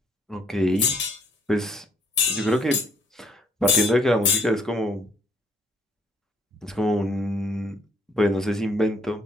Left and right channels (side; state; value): both; normal; correlation 0.63